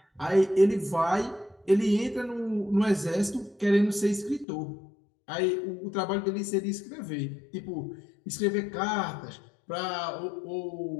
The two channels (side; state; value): right; drops out; at 4.5 s